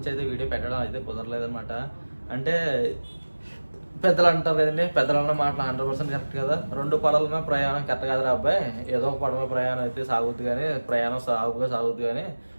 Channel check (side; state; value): both; inverted; correlation -1.00